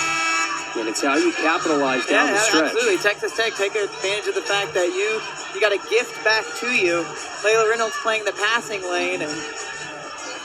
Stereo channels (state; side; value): identical; both; correlation 1.00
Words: And it's how you capitalize down the stretch. Absolutely. Texas Tech take advantage of the fact that you got a gift back to you. Layla Reynolds playing the passing lane. And